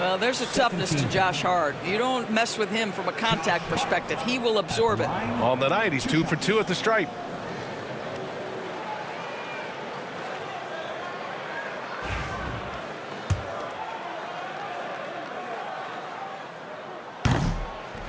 there's a toughness to Josh Hart. You don't mess with him from a contact perspective. He will absorb it. On the night, he's 2 for 2 at the stripe.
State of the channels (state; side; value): identical; both; correlation 1.00